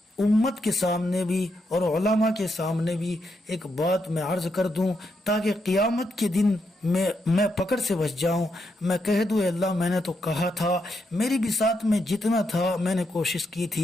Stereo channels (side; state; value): both; normal; correlation 0.81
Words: امت کے سامنے بھی اور علماء کے سامنے بھی ایک بات میں عرض کر دوں، تاکہ قیامت کے دن میں پکڑ سے بچ جاؤں، میں کہہ دوں اے اللہ میں نے تو کہا تھا، میری بھی ساتھ میں جتنا تھا میں نے کوشش کی